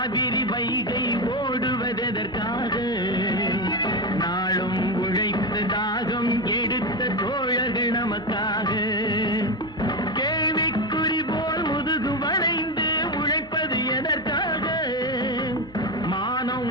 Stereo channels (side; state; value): both; normal; correlation 0.14